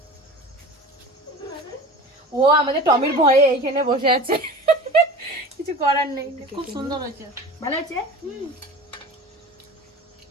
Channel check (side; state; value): both; normal; correlation 0.37